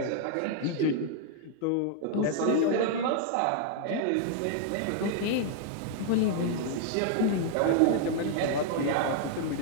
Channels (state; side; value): different; both; correlation 0.00